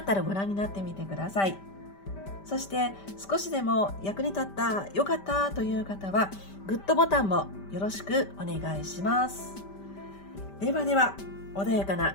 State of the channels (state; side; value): late; right; 5.1 ms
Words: たらご覧になってみてください。そして少しでも役に立った、よかったという方は、グッドボタンもよろしくお願いします。では、穏やか